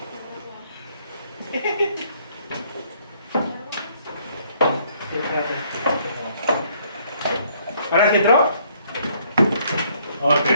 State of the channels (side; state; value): both; inverted; correlation -0.66